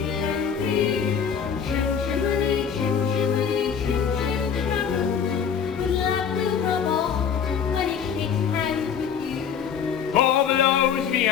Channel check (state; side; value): quieter; right; 7.4 dB